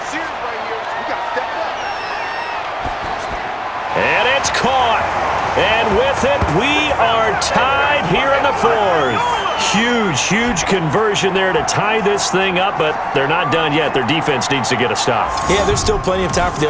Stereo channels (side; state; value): both; identical; correlation 1.00